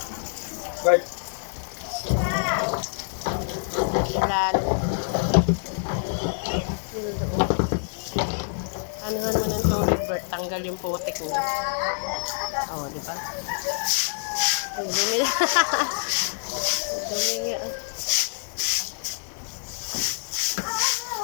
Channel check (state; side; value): silent; right; digital silence